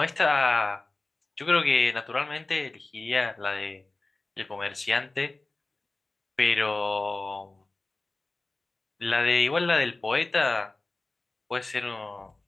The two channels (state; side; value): quieter; right; 3.1 dB